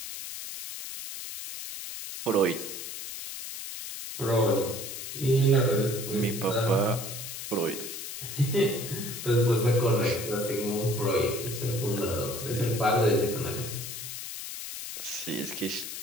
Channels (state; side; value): noise; left; hiss, 8 dB below the sound